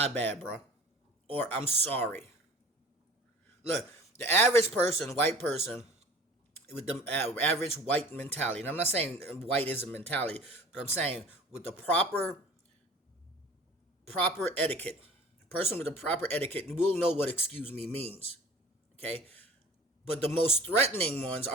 bad, bro. Or I'm sorry. Look, the average person, white person, with the average white mentality, and I'm not saying white is a mentality, but I'm saying with the proper etiquette, person with the proper etiquette will know what excuse me means. Okay? But the most threatening ones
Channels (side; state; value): both; normal; correlation 0.44